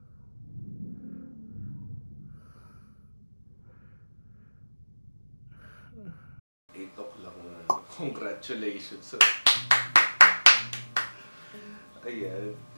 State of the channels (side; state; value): both; inverted; correlation -1.00